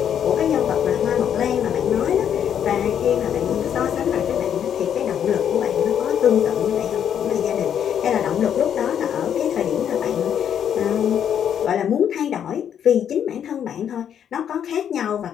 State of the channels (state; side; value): quieter; right; 9.0 dB